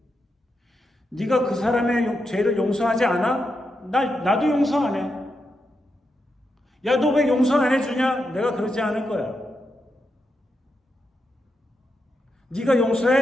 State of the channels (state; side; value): normal; both; correlation 0.85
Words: 네가 그 사람의 죄를 용서하지 않아? 나도 용서 안 해. 야, 너 왜 용서 안 해주냐? 내가 그러지 않을 거야. 네가